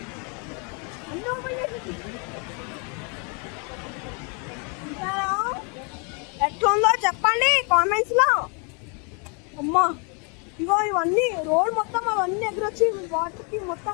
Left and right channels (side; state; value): right; quieter; 35.8 dB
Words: ఎట్లుందో చెప్పండి కామెంట్స్ లో. అమ్మా ఇగో ఇవన్నీ రోడ్ మొత్తం అవన్నీ ఎదురొచ్చి వాటర్కి